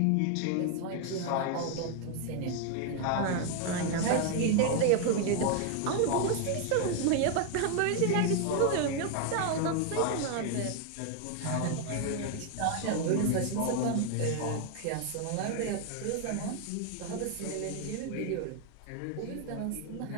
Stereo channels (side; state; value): both; different; correlation 0.01